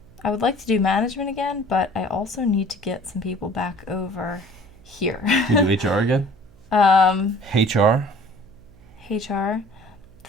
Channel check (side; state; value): right; noise; hum, 26 dB below the sound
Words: would like to do management again, but I also need to get some people back over here. You do HR again? HR? HR. The